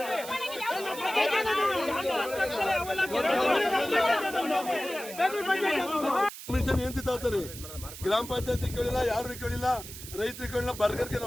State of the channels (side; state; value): right; noise; hiss, 12 dB below the sound